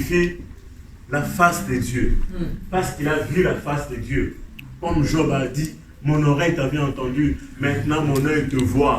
la face de Dieu. Parce qu'il a vu la face de Dieu. Comme Job a dit, mon oreille t'avait entendu, maintenant mon œil te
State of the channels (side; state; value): both; identical; correlation 1.00